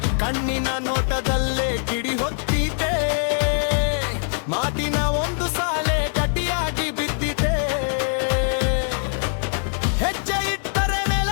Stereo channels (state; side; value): silent; right; 64 dB below the other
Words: ಕಣ್ಣಿನ ನೋಟದಲ್ಲೇ ಕಿಡಿ ಹೊತ್ತಿದೆ. ಮಾತಿನ ಒಂದು ಸಾಲೆ ಗಟ್ಟಿಯಾಗಿ ಬಿದ್ದಿದೆ. ಹೆಜ್ಜೆ ಇಟ್ಟರೆ